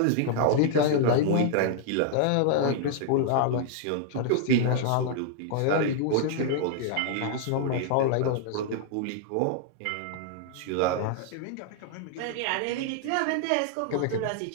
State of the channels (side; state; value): both; different; correlation -0.01